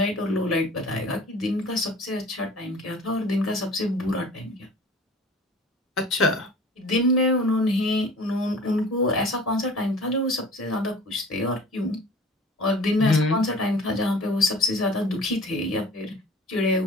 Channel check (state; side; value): normal; both; correlation 0.45